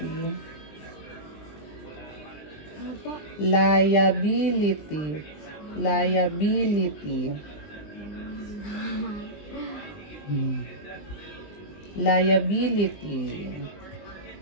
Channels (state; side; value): late; right; 20 ms